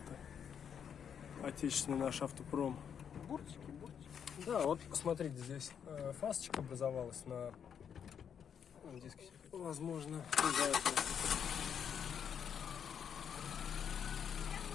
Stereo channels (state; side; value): quieter; right; 7.9 dB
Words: Отечественный наш автопром. Буртики. Да, вот смотрите, здесь фасочка образовалась на диске. Возможно, из-за этого.